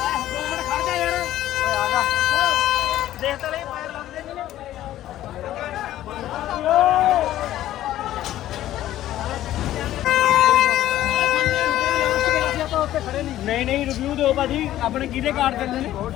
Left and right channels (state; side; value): quieter; right; 13.4 dB